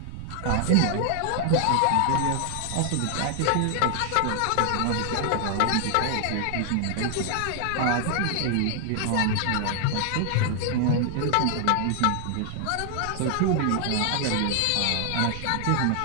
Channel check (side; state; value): both; different; correlation 0.00